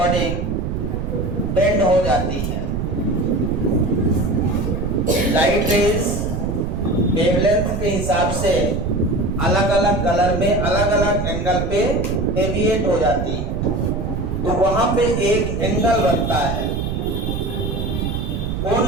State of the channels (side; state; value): right; noise; rumble, 2 dB below the sound